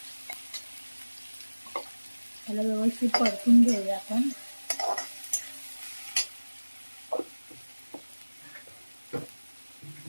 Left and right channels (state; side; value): inverted; both; correlation -1.00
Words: त्याला व्यवस्थित परतून घेऊया आपण.